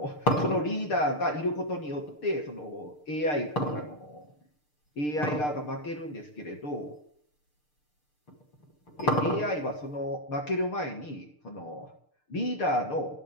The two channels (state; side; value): late; right; 6.7 ms